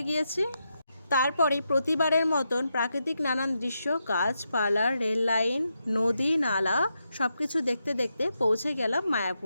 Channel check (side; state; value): both; inverted; correlation -0.84